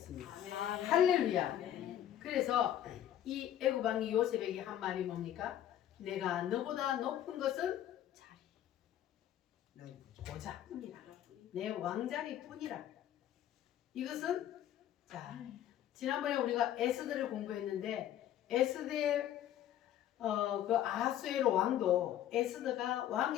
할렐루야. 그래서 이 애굽 왕이 요셉에게 한 말이 뭡니까? 내가 너보다 높은 것은 보자뿐이라. 내 왕자리뿐이라. 이것은 자 지난번에 우리가 에스더를 공부했는데 에스더의 그 아하수에로 왕도 에스더가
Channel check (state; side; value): quieter; right; 11.4 dB